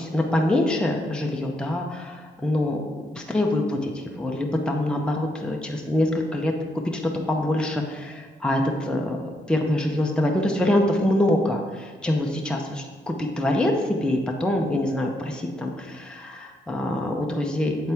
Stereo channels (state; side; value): normal; both; correlation 0.79